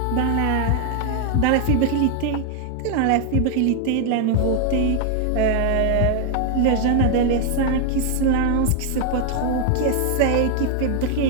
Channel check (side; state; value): both; different; correlation 0.00